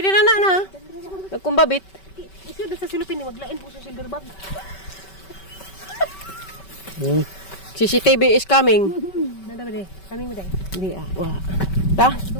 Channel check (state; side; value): late; right; 5.2 ms